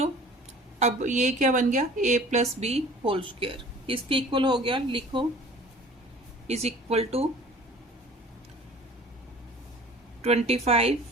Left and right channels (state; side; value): normal; both; correlation 0.47